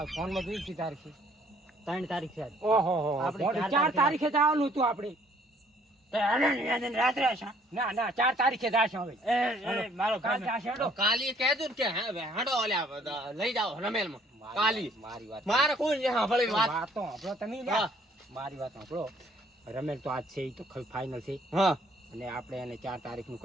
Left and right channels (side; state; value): both; normal; correlation 0.61